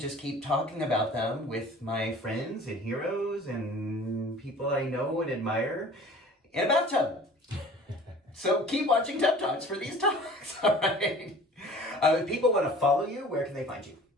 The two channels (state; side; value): normal; both; correlation 0.46